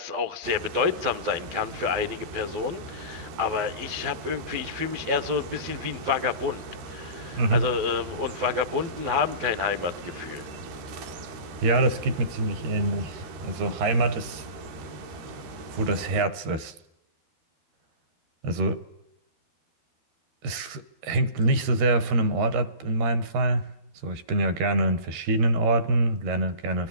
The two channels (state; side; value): late; left; 13 ms